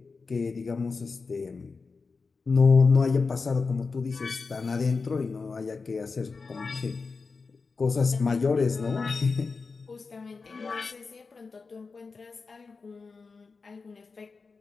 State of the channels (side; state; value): right; quieter; 4.5 dB